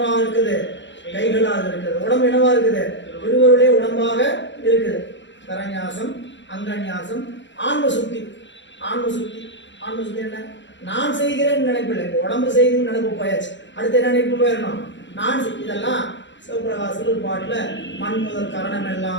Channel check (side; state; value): right; late; 0.53 ms